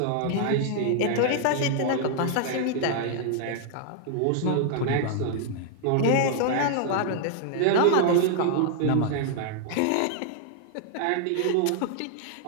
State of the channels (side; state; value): both; different; correlation -0.01